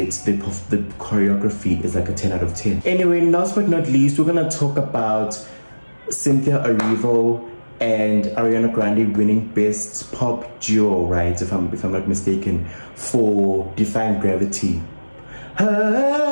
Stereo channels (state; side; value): inverted; both; correlation -1.00